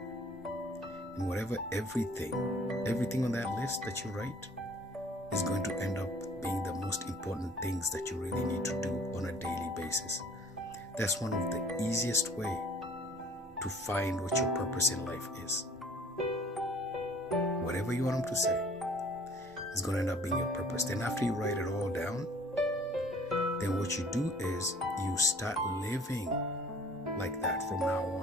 And whatever, everything on that list that you write is going to end up being the most important things that you really need to do on a daily basis. That's one of the easiest way to find what your purpose in life is. Whatever you want them to say is going to end up being your purpose. Then after you write it all down, then what you do is you start living like that from now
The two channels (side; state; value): both; normal; correlation 0.53